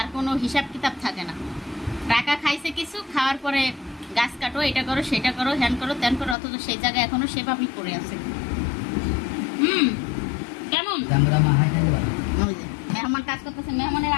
কোনো হিসাব কিতাব থাকে না। টাকা খাইছে কিছু, খাওয়ার পরে গাছ কাটো, এটা করো সেটা করো, হ্যান করো ত্যান করো, অথচ সেই জায়গায় এখনো সেভাবেই পড়ে আছে। কেমন মেহমান কাজ করতেছে, মেহমানের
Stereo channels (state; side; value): drops out; right; at 6.4 s